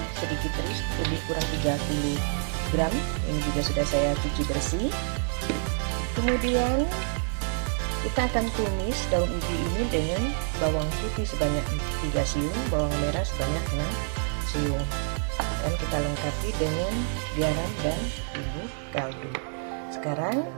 sedikit teri lebih kurang 30 gram, ini juga sudah saya cuci bersih. Kemudian kita akan tumis daun ubi ini dengan bawang putih sebanyak 3 siung, bawang merah sebanyak 6 siung, dan kita lengkapi dengan garam dan bubuk kaldu. Sekarang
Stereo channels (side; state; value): left; silent; 60 dB below the other